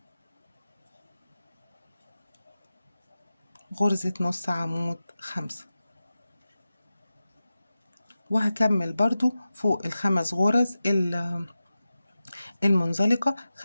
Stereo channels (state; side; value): inverted; both; correlation -0.94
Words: غرزة نص عمود 5. وهكمل برضو فوق ال5 غرز المنزلقة